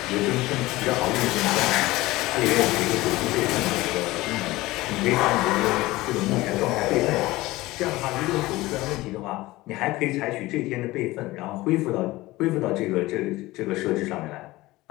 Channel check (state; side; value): quieter; right; 19.0 dB